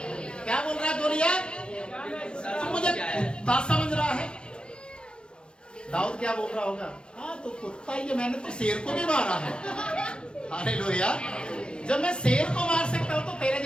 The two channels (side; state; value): right; late; 0.055 ms